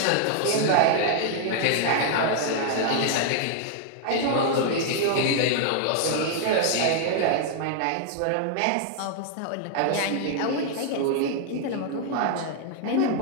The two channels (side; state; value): both; different; correlation 0.00